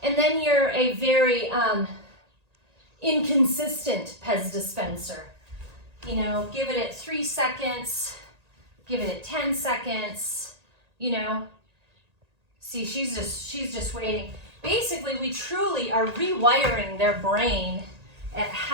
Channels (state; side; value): late; left; 1.8 ms